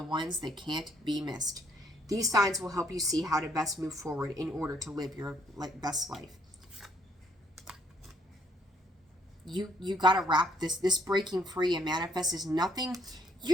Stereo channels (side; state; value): both; normal; correlation 0.67